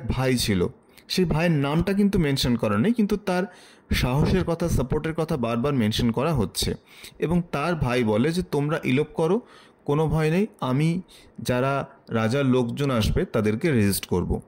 ভাই ছিল। সেই ভাইয়ের নামটা কিন্তু মেনশন করা নেই, কিন্তু তার সাহসের কথা, সাপোর্টের কথা বারবার মেনশন করা হচ্ছে। এবং তার ভাই বলে যে তোমরা ইলোপ করো, কোনো ভয় নেই, আমি যারা রাজার লোকজন আসবে তাদেরকে রেজিস্ট করব।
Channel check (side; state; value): both; identical; correlation 1.00